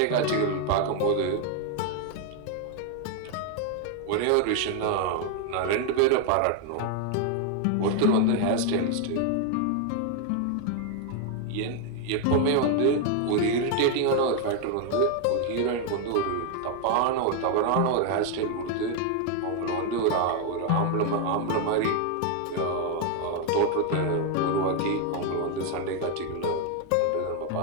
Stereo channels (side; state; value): both; different; correlation 0.01